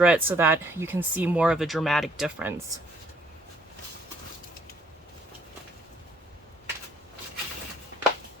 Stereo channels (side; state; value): both; normal; correlation 0.64